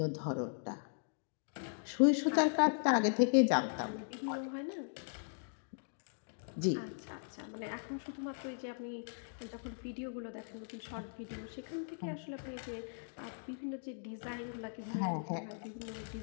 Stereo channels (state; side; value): silent; right; digital silence